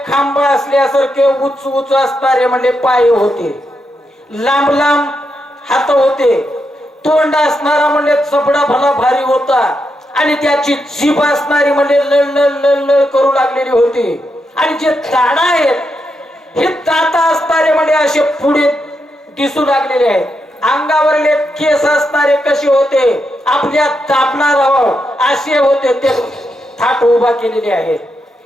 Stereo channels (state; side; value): normal; both; correlation 0.83